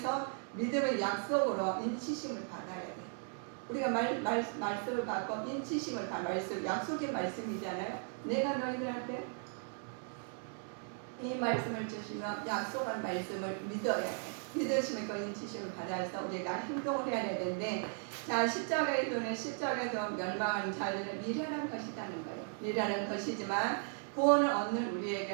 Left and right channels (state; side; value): silent; left; 53 dB below the other